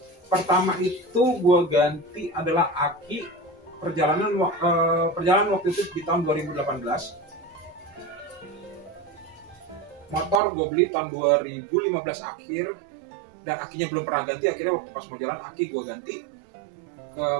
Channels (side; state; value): left; drops out; at 10.4 s